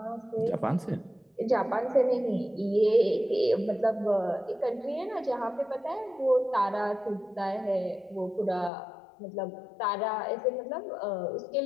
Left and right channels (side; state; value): right; drops out; at 8.7 s